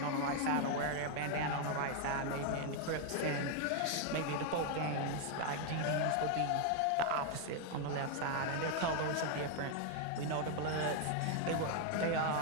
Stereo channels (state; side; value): different; both; correlation 0.01